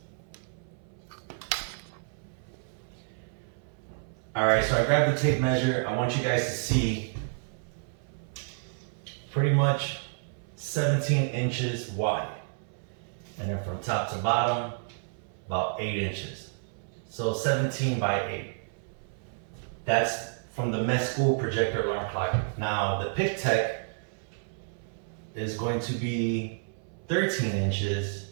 All right, so I grabbed the tape measure. I want you guys to see pretty much 17 inches wide. And then from top to bottom, about 8 inches. So 17 by 8. That's from the Mesqool projector alarm clock. Now the Pictek is going to be 13 inches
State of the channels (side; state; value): left; silent; 58 dB below the other